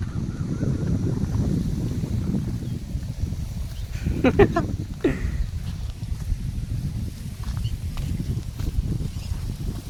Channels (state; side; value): identical; both; correlation 1.00